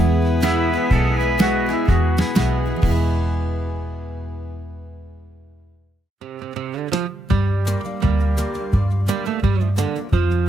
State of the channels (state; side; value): normal; both; correlation 0.81